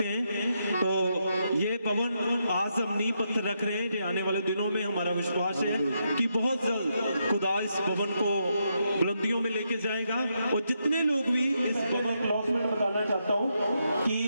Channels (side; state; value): both; inverted; correlation -0.81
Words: हैं। तो ये भवन आज हम नींव पत्थर रख रहे हैं, जो आने वाले दिनों में हमारा विश्वास है कि बहुत जल्द खुदा इस भवन को बुलंदियों में लेके जाएगा। और जितने लोग भी इस भवन अनाउंसमेंट बताना चाहता हूँ कि